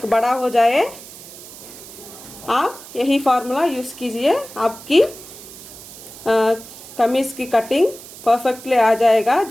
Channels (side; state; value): right; noise; hiss, 16 dB below the sound